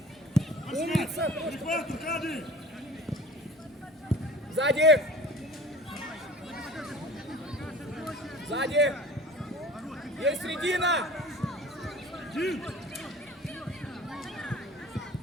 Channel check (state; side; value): normal; both; correlation 0.42